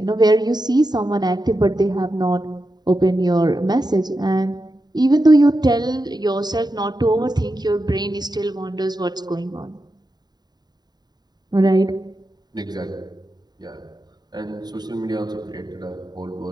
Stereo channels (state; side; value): late; left; 0.20 ms